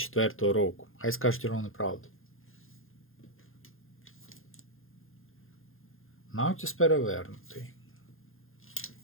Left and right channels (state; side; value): late; right; 0.60 ms